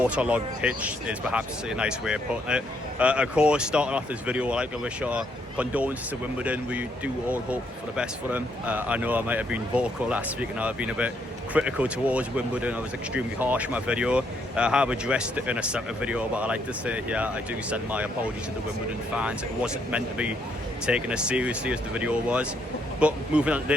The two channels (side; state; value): both; normal; correlation 0.73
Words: pitch, is perhaps a nice way of putting it. Of course, starting off this video, I'd like to wish our condolences to Wimbledon. We do all hope for the best for them. I know I might have been vocal last week and I've been a bit critical towards Wimbledon. I was extremely harsh in my video. I have addressed it in a separate video, but I like to say here, I do send my apologies to the Wimbledon fans. It wasn't meant to be taken as seriously as the video was. But moving on to